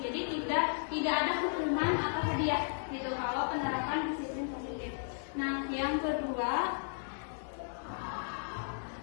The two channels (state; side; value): silent; right; digital silence